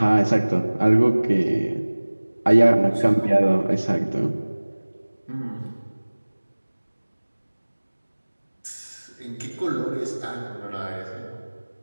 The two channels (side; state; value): both; inverted; correlation -1.00